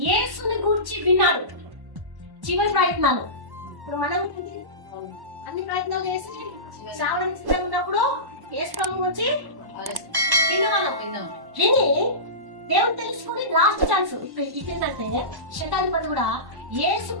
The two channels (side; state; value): left; late; 1.1 ms